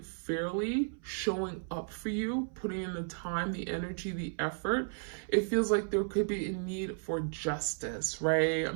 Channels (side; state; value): left; silent; 55 dB below the other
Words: showing up for you, putting in the time, the energy, the effort. It feels like there could be a need for justice, right?